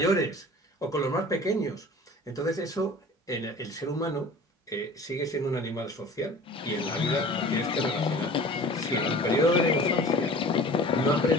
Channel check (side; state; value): both; normal; correlation 0.43